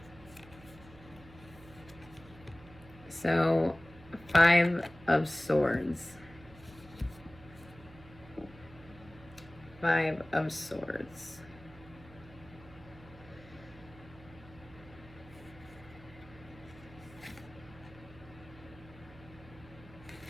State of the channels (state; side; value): noise; right; hum, 20 dB below the sound